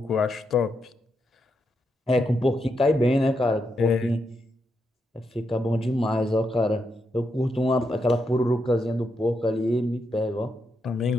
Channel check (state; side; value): normal; both; correlation 0.82